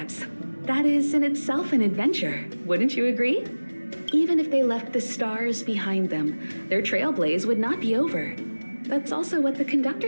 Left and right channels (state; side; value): inverted; both; correlation -1.00